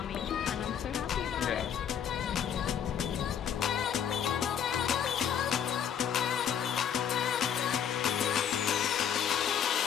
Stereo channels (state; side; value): quieter; right; 8.7 dB